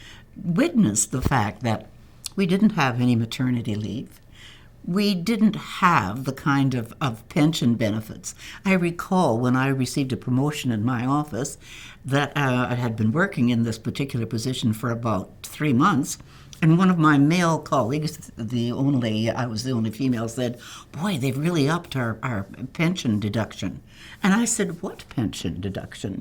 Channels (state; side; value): identical; both; correlation 1.00